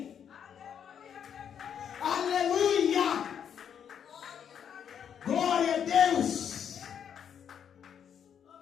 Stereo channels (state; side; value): quieter; right; 8.3 dB